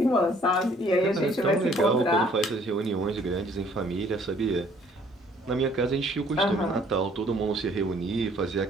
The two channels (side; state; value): both; normal; correlation 0.60